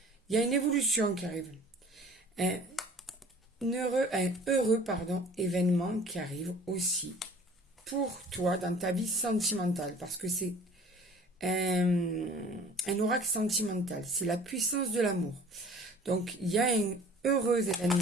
Il y a une évolution qui arrive. Un heureux événement qui arrive aussi pour toi dans ta vie sentimentale. Parce que c'est un oracle sentimental. C'est la puissance de l'amour. Donc, il y a un heureux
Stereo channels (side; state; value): both; normal; correlation 0.47